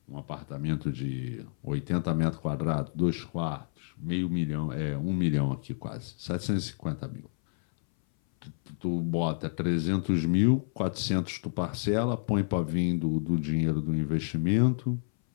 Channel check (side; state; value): right; silent; 58 dB below the other